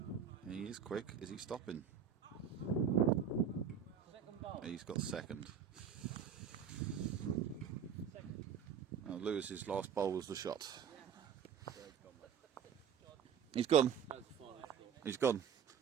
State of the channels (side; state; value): left; quieter; 7.8 dB